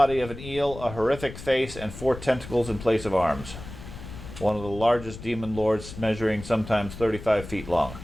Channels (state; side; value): noise; left; rumble, 13 dB below the sound